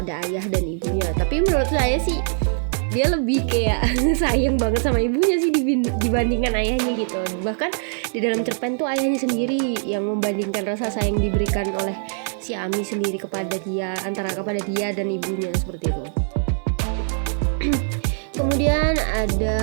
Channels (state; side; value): silent; left; digital silence